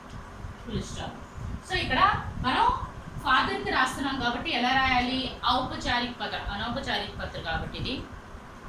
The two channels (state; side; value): identical; both; correlation 1.00